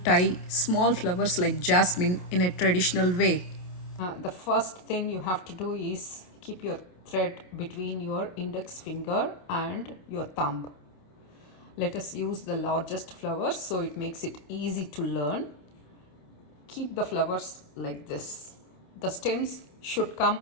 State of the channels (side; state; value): right; late; 28 ms